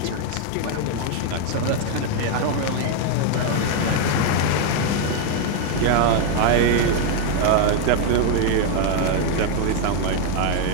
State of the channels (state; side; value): different; both; correlation 0.00